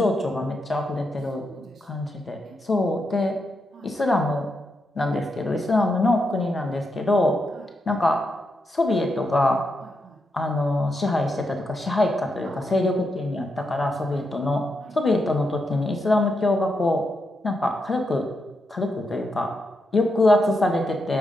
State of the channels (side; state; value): both; normal; correlation 0.84